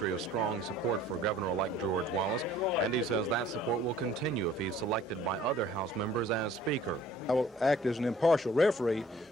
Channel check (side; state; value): both; normal; correlation 0.54